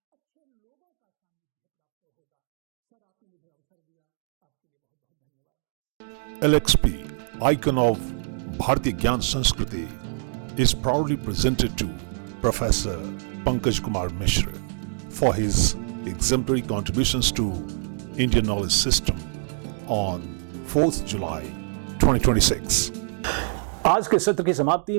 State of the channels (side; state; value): left; silent; 61 dB below the other